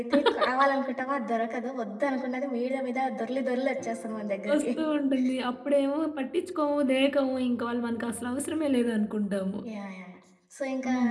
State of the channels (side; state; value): both; identical; correlation 1.00